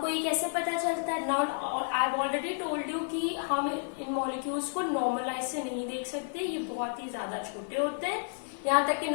ये कैसे पता चलता है? Now I have already told you कि हम इन मॉलिक्यूल्स को नॉर्मल आई से नहीं देख सकते, ये बहुत ही ज्यादा छोटे होते हैं, यहाँ तक कि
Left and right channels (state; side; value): silent; right; 56 dB below the other